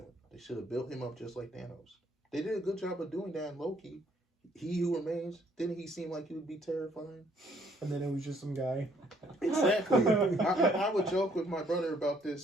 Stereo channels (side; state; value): both; normal; correlation 0.66